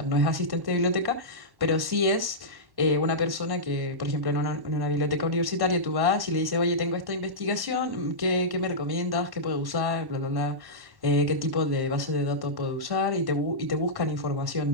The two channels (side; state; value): left; late; 1.1 ms